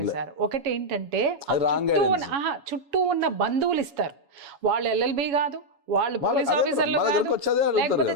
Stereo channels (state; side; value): late; left; 7.2 ms